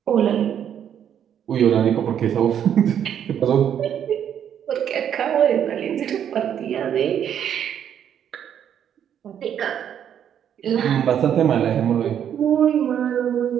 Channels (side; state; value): left; quieter; 9.2 dB